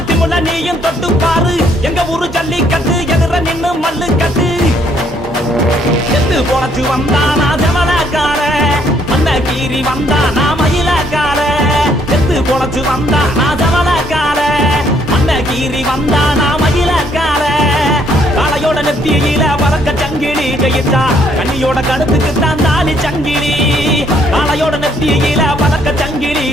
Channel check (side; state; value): both; normal; correlation 0.68